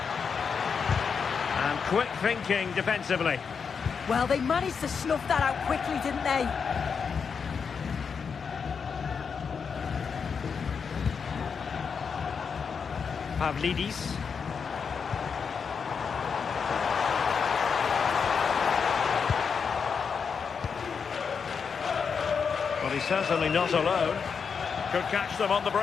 And quick thinking defensively. Well, they managed to snuff that out quickly, didn't they? Pavlidis. Well, he's certainly not alone. Could catch them on the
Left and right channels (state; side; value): quieter; right; 6.1 dB